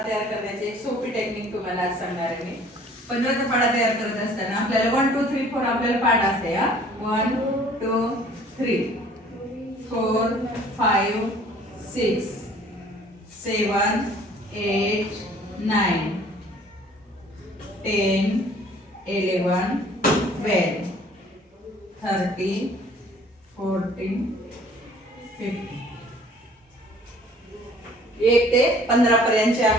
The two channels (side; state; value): both; normal; correlation 0.54